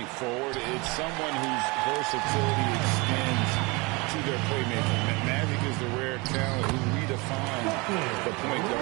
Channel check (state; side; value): quieter; left; 26.5 dB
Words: forward, it's someone whose versatility extends to their playmaking. Magic is the rare talent who redefines the point